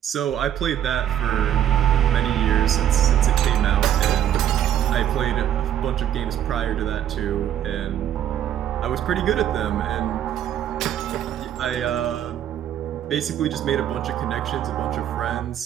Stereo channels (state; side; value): quieter; left; 10.7 dB